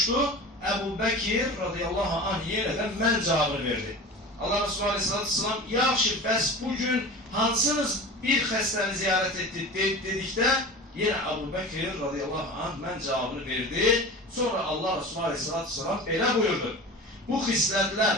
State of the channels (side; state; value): both; normal; correlation 0.34